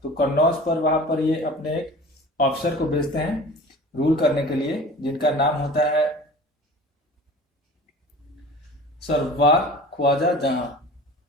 तो कन्नौज पर वहां पर ये अपने एक ऑफिसर को भेजते हैं रूल करने के लिए, जिनका नाम होता है सरवार ख्वाजा जहां।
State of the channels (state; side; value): normal; both; correlation 0.41